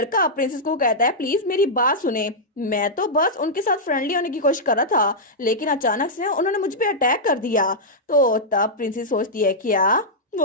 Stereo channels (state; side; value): normal; both; correlation -0.08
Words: प्रिंसेस को कहता है प्लीज मेरी बात सुने, मैं तो बस उनके साथ फ्रेंडली होने की कोशिश कर रहा था, लेकिन अचानक से उन्होंने मुझ पे अटैक कर दिया। तो तब प्रिंसेस सोचती है क्या,